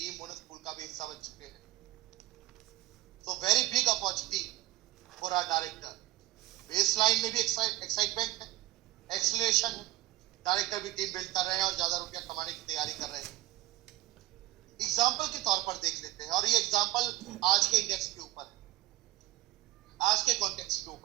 बोनस पूल का भी हिस्सा बन चुके हैं. तो very big opportunity for our director. Baseline में भी एक्साइटमेंट है, एक्सीलरेशन है. डायरेक्टर भी टीम बिल्ड कर रहे हैं और ज्यादा रुपया कमाने की तैयारी कर रहे हैं. एग्जाम्पल के तौर पर देख लेते हैं और ये एग्जाम्पल आज के इंडेक्स के ऊपर है, आज के कॉन्टेक्स्ट के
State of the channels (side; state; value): left; quieter; 16.6 dB